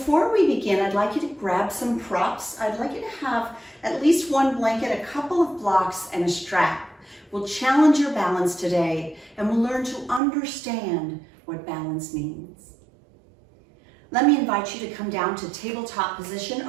we begin, I'd like you to grab some props. I'd like you to have at least one blanket, a couple of blocks, and a strap. We'll challenge your balance today and we'll learn to understand what balance means. Let me invite you to come down to tabletop position,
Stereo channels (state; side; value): drops out; left; at 10.2 s